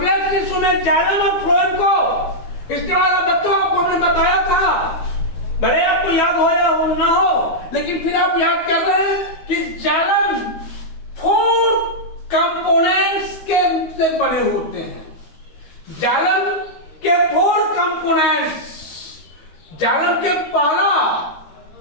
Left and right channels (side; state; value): right; late; 13 ms